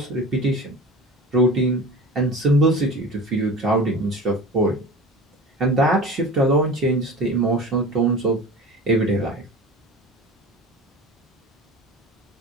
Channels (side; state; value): both; normal; correlation 0.35